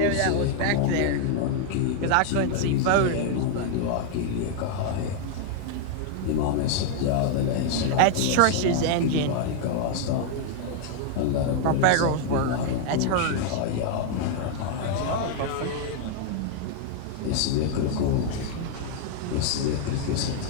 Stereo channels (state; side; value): different; both; correlation 0.00